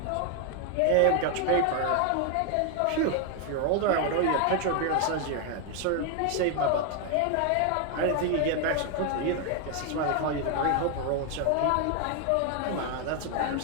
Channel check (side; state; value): both; different; correlation 0.01